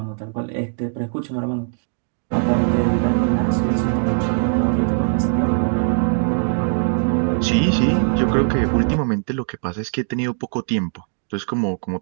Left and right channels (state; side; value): silent; left; 65 dB below the other